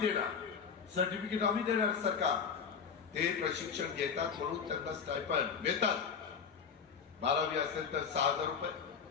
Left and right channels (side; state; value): right; quieter; 6.4 dB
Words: सर्टिफिकेट आम्ही देणार. सरकार ते प्रशिक्षण घेतात म्हणून त्यांना स्टायपंड मिळतात. 12वी असेल तर 6,000 रुपये,